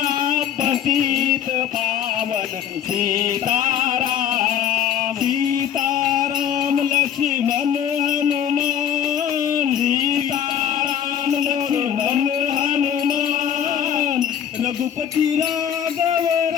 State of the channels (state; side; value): quieter; right; 9.3 dB